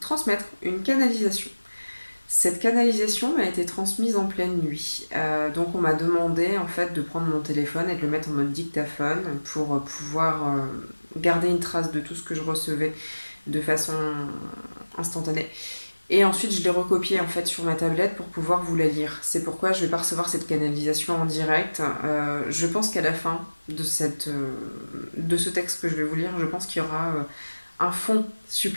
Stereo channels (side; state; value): both; inverted; correlation -1.00